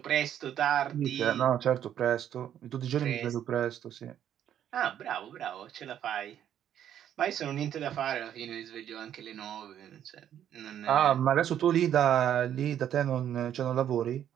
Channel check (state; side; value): quieter; left; 10.2 dB